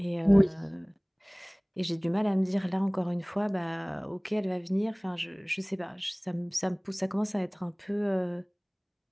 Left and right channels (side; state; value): both; identical; correlation 1.00